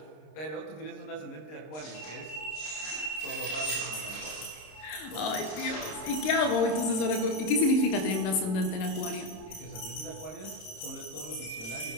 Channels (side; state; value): right; late; 26 ms